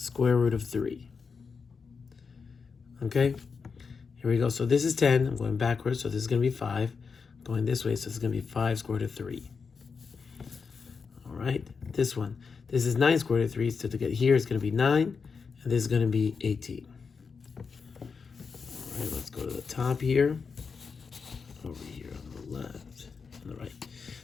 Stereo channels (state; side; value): quieter; right; 5.4 dB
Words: root of 3. Okay, here we go. So this is 10. I'm going backwards, so this is going to be 5. Going this way, so this is going to be 5 square root of 3. All right, this one. This is 9 square root of 3, so to get here, it's going to be 9, and this is going to be 18. All right, let's go to the top here. Over here on the left, on the right.